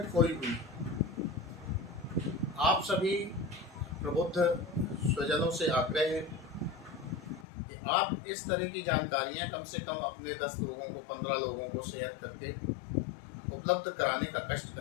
खोई हुई, आप सभी प्रबुद्ध स्वजनों से आग्रह है कि आप इस तरह की जानकारियां कम से कम अपने 10 लोगों को, 15 लोगों को शेयर करके उपलब्ध कराने का कष्ट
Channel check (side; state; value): right; drops out; at 7.5 s